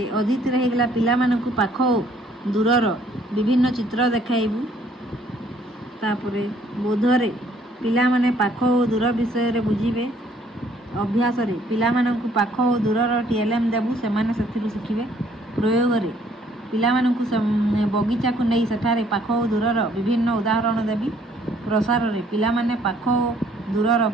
अदिति रे हेगला पिला मानकु पाख दूरर विभिन्न चित्र देखाइबु। तापरे बोध रे पिला माने पाख और दूर विषय रे बुझिबे। अभ्यास रे पिला मानकु पाख और दूरर टीएलएम देबु सेमाने सेथिरु शिखिबे। प्रयोग रे पिला मानकु बगीचा को नहीं सेठारे पाख और दूरर विभिन्न उदाहरण देबी। प्रसार रे पिला माने पाख और दूरर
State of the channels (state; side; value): normal; both; correlation 0.62